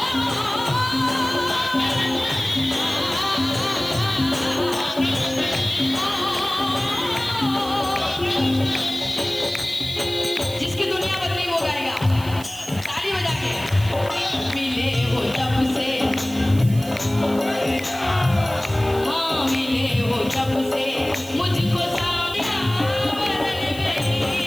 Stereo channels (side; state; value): right; noise; hiss, 17 dB below the sound